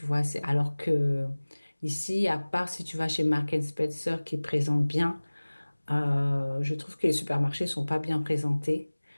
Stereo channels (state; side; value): inverted; both; correlation -1.00